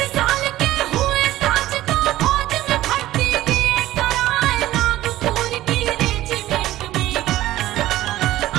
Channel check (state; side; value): quieter; left; 15.2 dB